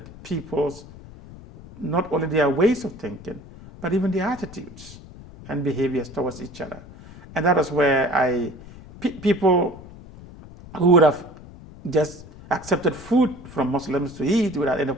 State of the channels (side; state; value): left; noise; rumble, 18 dB below the sound